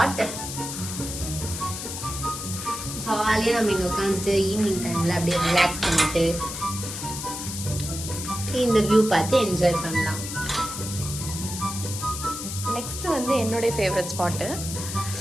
ஜாலியாக நம்ம இங்கே உட்காந்துட்டு ஈவினிங் டைமில் அப்படியே ரிலாக்ஸ் பண்ணிட்டு இந்த வியூ பார்த்து என்ஜாய் பண்ணலாம். நெக்ஸ்ட் வந்து என்னுடைய ஃபேவரட் ஸ்பாட்டு.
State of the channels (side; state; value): left; noise; hiss, 7 dB below the sound